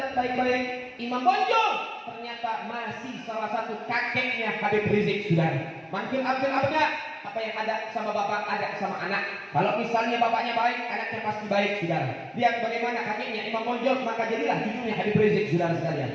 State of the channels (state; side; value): identical; both; correlation 1.00